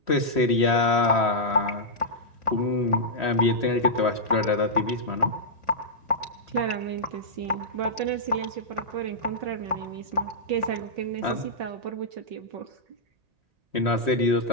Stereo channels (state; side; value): late; left; 1.8 ms